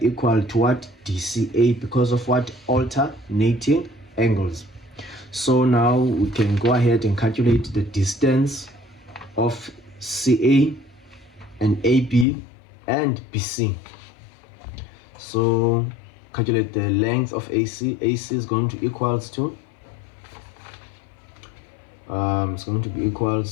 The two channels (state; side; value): drops out; right; at 12.2 s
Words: equal to what? DCA, because of what? Alternating angles. So now we can go ahead and calculate the distance of CA and AB and BC. So calculate the length of AC. AC is going to equals to it's going to be